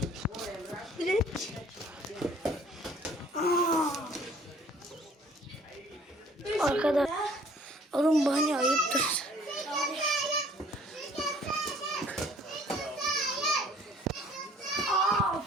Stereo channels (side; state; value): both; normal; correlation 0.56